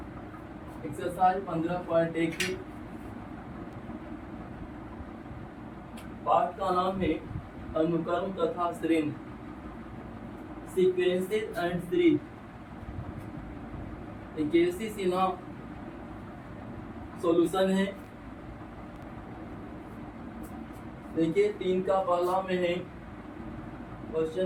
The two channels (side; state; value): both; identical; correlation 1.00